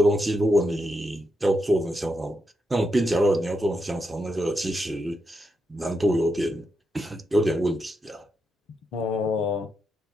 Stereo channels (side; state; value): both; normal; correlation 0.84